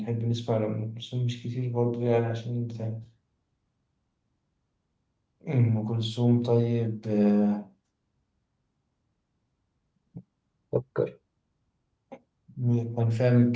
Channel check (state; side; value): identical; both; correlation 1.00